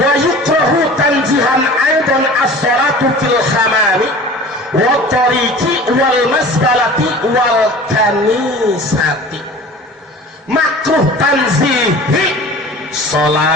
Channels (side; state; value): both; normal; correlation 0.41